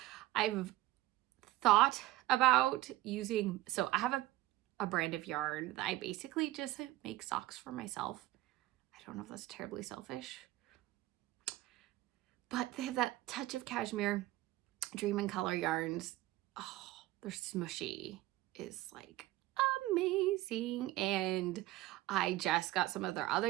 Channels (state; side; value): quieter; left; 16.7 dB